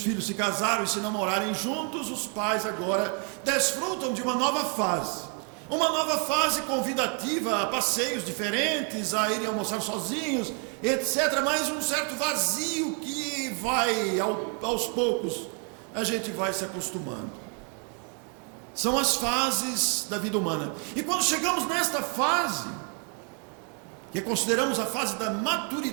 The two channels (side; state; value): left; quieter; 39.4 dB